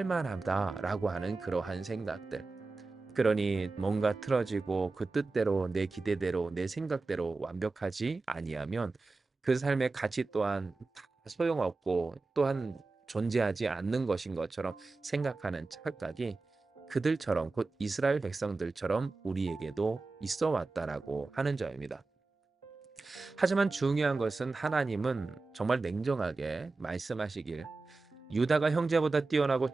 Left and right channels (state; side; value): quieter; left; 3.7 dB